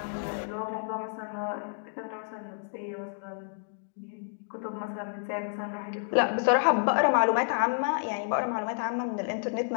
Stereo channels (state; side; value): silent; right; digital silence